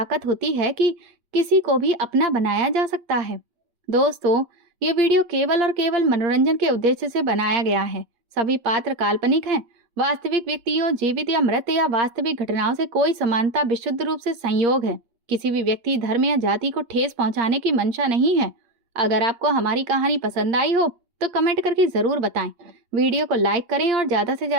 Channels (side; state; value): left; late; 8.7 ms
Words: होती है कि किसी को भी अपना बनाया जा सकता है? दोस्तों, ये वीडियो केवल और केवल मनोरंजन के उद्देश्य से बनाया गया है। सभी पात्र काल्पनिक हैं। वास्तविक व्यक्तियों, जीवित या मृत या वास्तविक घटनाओं से कोई समानता विशुद्ध रूप से संयोग है। किसी भी व्यक्ति, धर्म या जाति को ठेस पहुंचाने की मंशा नहीं है। अगर आपको हमारी कहानी पसंद आई हो तो कमेंट करके ज़रूर बताएं। वीडियो को लाइक करें और ज़्यादा से